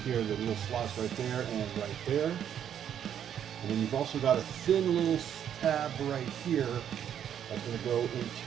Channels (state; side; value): quieter; left; 9.4 dB